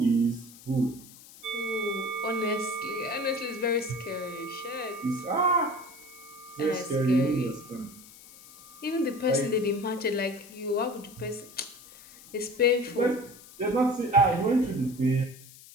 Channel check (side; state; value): left; noise; hiss, 20 dB below the sound